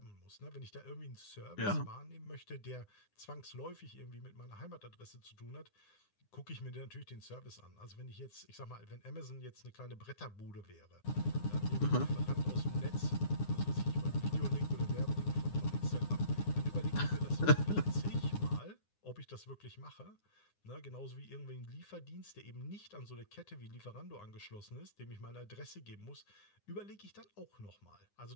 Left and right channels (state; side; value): late; right; 9.8 ms